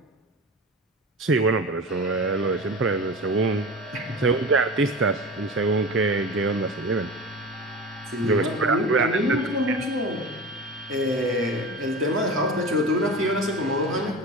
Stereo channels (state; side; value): normal; both; correlation 0.31